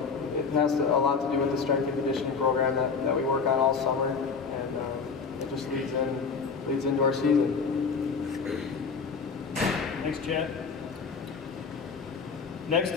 it has a lot to do with the strength and conditioning program that we work on all summer, and it just leads into our season. Thanks, Chad. Next,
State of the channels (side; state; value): right; quieter; 5.3 dB